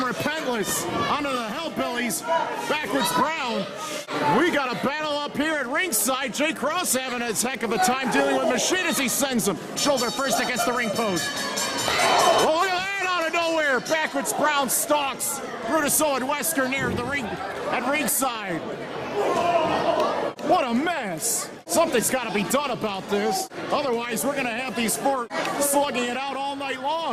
Repentless onto the Hellbillys. Backwoods Brown. We got a battle up here at ringside. Jay Kross having a heck of a time dealing with Machine as he sends him shoulder first against the ring post. Oh, look at that out of nowhere. Backwoods Brown stalks Brutus Owen Wesker near the ring at ringside. What a mess. Something's got to be done about this. Otherwise, we're going to have these 4 slugging it out all night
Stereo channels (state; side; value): identical; both; correlation 1.00